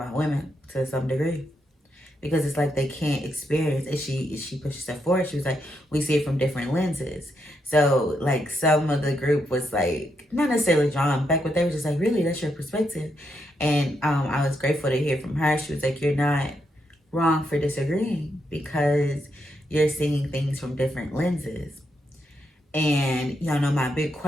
women to some degree, because it's like they can't experience it. She pushes stuff forward. She was like, we see it from different lenses. So like, some of the group was like not necessarily drawn back, but they were just like, really, that's your perspective. And I was grateful to hear from her. She was like, you're not wrong for disagreeing, because you're seeing things from different lenses. And y'all know my big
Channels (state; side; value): normal; both; correlation 0.80